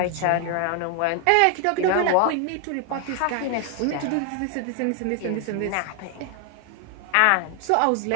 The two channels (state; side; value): different; both; correlation 0.00